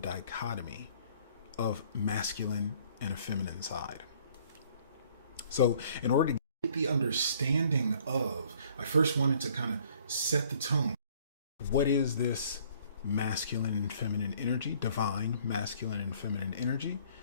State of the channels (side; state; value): both; inverted; correlation -0.59